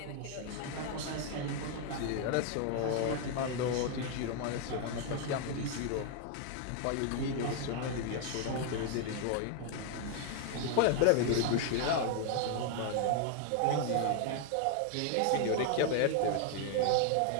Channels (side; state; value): both; different; correlation 0.00